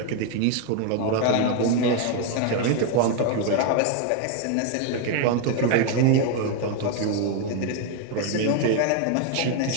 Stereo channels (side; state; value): both; different; correlation 0.01